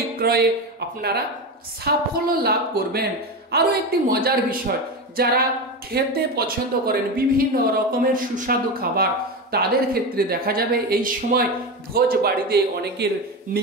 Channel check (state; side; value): normal; both; correlation 0.20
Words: আপনারা সাফল্য লাভ করবেন। আরও একটি মজার বিষয়, যারা খেতে পছন্দ করেন বিভিন্ন রকমের সুস্বাদু খাবার, তাদের ক্ষেত্রে দেখা যাবে এই সময় ভোজ বাড়িতে অনেকের